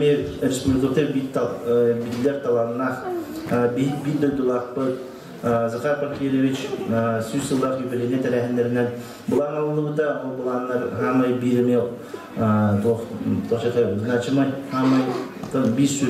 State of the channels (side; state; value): both; identical; correlation 1.00